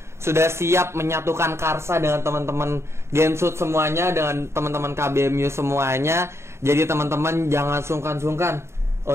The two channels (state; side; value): late; left; 0.13 ms